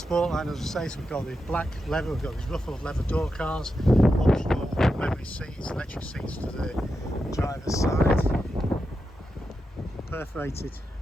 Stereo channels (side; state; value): both; normal; correlation 0.88